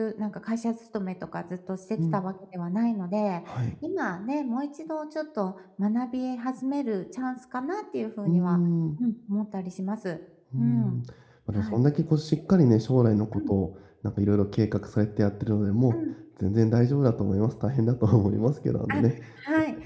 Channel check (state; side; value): identical; both; correlation 1.00